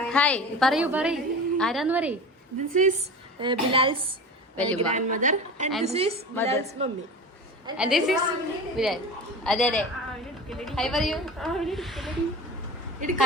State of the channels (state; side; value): normal; both; correlation 0.32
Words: ഹായ് പറയൂ ആരാന്ന് പറയൂ. This is Bilal's grandmother and this is Bilal's mummy. And this is Bilal. അതെ ഹായ് പറയൂ.